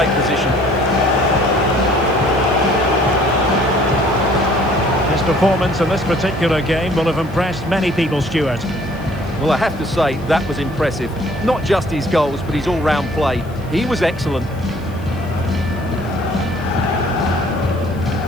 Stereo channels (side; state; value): left; noise; hiss, 27 dB below the sound